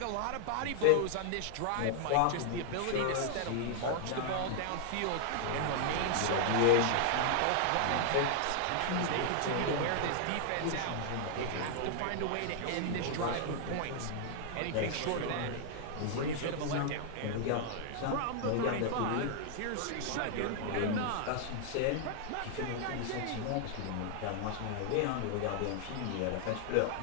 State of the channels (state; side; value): different; both; correlation 0.00